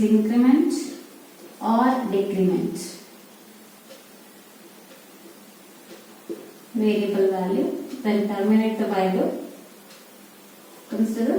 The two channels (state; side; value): identical; both; correlation 1.00